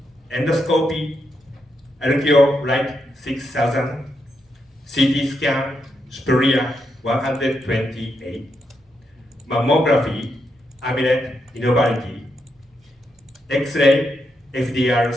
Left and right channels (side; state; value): both; normal; correlation 0.82